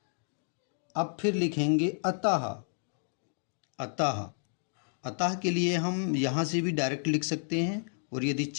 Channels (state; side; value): silent; right; digital silence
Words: अब फिर लिखेंगे अतः, अतः के लिए हम यहाँ से भी डायरेक्ट लिख सकते हैं, और यदि